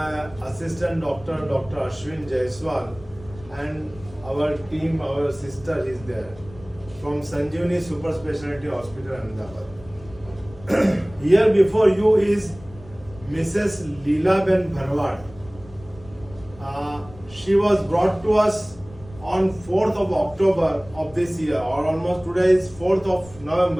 assistant doctor, Dr. Ashwin Jaiswal, and our team, our sister is there from Sanjeevani Super Speciality Hospital, Ahmedabad. Here before you is Mrs. Leela Ben Bharwad. She was brought to us on 4th of October of this year, or almost today is 4th of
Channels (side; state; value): left; noise; rumble, 20 dB below the sound